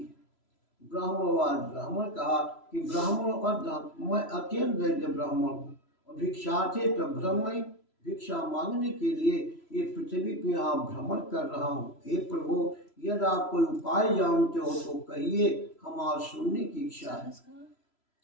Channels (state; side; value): late; right; 3.0 ms